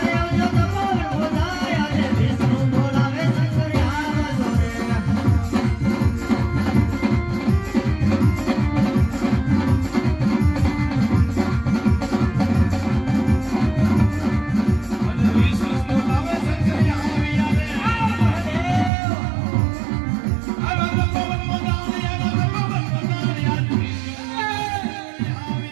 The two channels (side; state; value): left; drops out; at 18.9 s